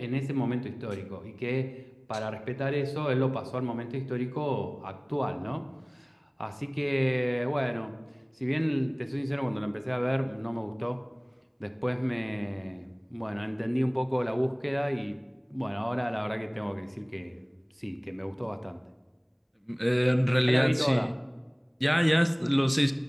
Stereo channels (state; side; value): identical; both; correlation 1.00